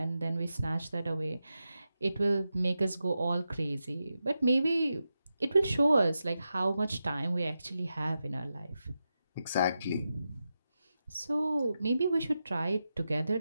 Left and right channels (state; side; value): inverted; both; correlation -0.90